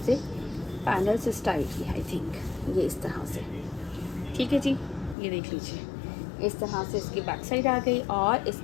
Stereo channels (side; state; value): right; drops out; at 5.2 s